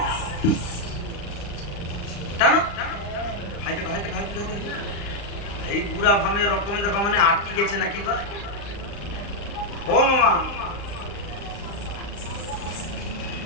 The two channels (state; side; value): late; right; 35 ms